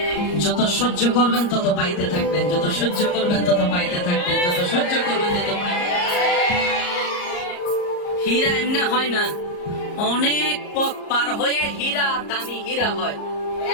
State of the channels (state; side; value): late; right; 34 ms